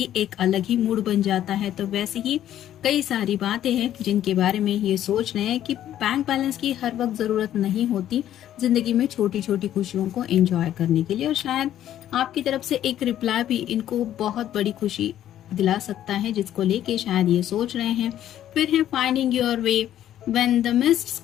एक अलग ही मूड बन जाता है। तो वैसे ही कई सारी बातें हैं जिनके बारे में ये सोच रहे हैं कि बैंक बैलेंस की हर वक्त जरूरत नहीं होती जिंदगी में छोटी छोटी खुशियों को एंजॉय करने के लिए, और शायद आपकी तरफ से एक रिप्लाई भी इनको बहुत बड़ी खुशी दिला सकता है, जिसको लेके शायद ये सोच रहे हैं। फिर है finding your way. When the mist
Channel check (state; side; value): quieter; right; 11.7 dB